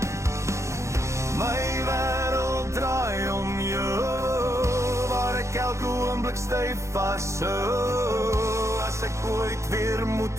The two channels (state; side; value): late; left; 0.14 ms